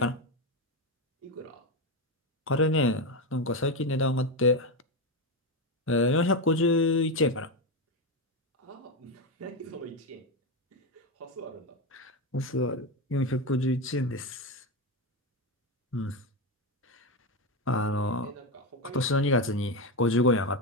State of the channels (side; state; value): both; normal; correlation 0.12